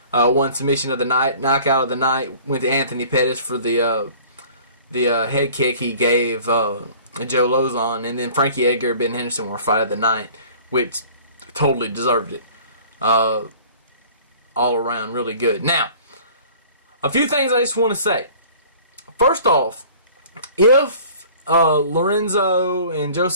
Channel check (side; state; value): both; inverted; correlation -0.48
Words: won submission of the night. Knockout of the night went to Anthony Pettis for the head kick he gave Joe Lozon. And then Frankie Edgar and Ben Henderson were fight of the night, which totally deserved it. All around really good. Now, a few things I just want to say. First off, if Lorenzo and Joe